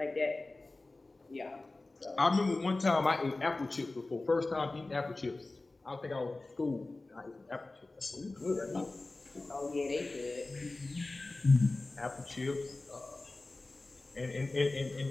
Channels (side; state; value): right; quieter; 3.1 dB